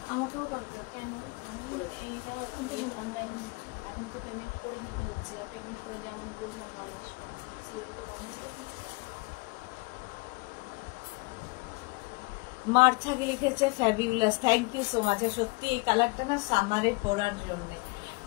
আমাকেও কালকে। এখন তো পেমেন্ট করে নিতে হচ্ছে, আর পেমেন্ট করে যেমন বলবো মাল আসবে মার্থাকে লিখেছে fabulous, thank you so much. সত্যি এই কালারটা না সামারে পরার জন্য।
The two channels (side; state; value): right; quieter; 26.7 dB